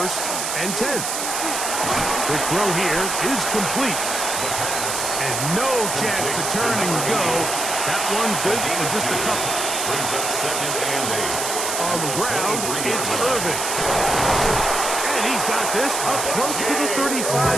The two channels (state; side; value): noise; right; hiss, 2 dB below the sound